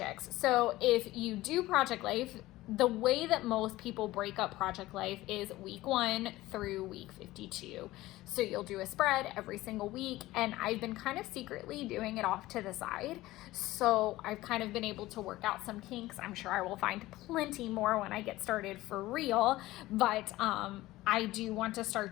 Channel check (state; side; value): quieter; right; 17.4 dB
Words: So if you do project life, the way that most people break up project life is week 1 through week 52. So you'll do a spread every single week, and I've been kind of secretly doing it off to the side. So I've kind of been able to work out some kinks. I'm sure I will find plenty more when I get started for real, but I do want to